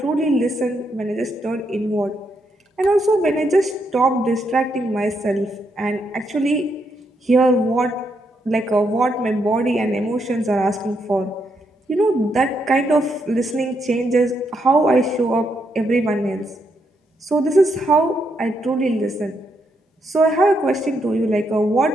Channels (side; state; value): both; normal; correlation 0.78